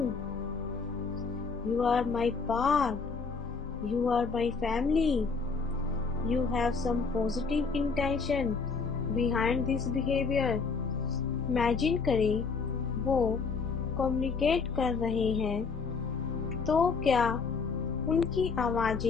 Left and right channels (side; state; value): right; quieter; 4.9 dB